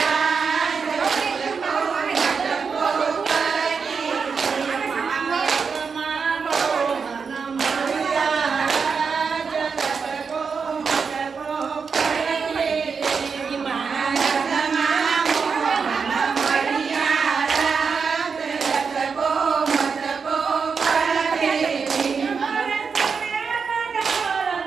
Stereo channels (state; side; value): quieter; left; 5.6 dB